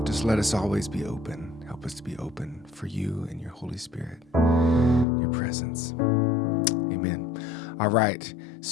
just let us always be open. Help us to be open for you and your Holy Spirit, your presence. Amen. All right.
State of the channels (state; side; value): drops out; right; at 5.1 s